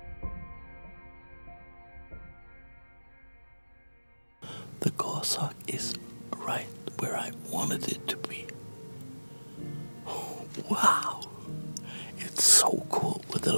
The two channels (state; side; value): inverted; both; correlation -1.00